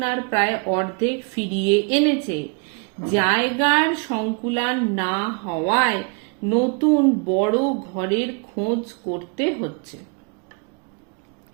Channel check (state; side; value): quieter; left; 36.1 dB